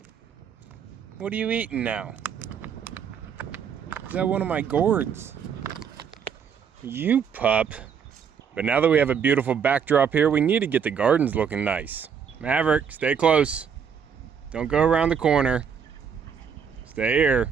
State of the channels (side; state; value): left; quieter; 7.1 dB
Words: What are you eating now? Is that one of my gourds? You pup. But now that we have a beautiful backdrop here, we need to get the gardens looking nice. Maverick, stay close. Don't go around the corner. Stay